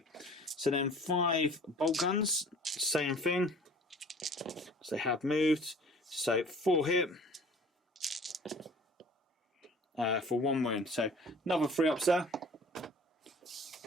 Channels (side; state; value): both; normal; correlation 0.48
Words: so then 5 bolt guns, same thing. So they have moved. So 4 hit for 1 wound. So another 3 ups there.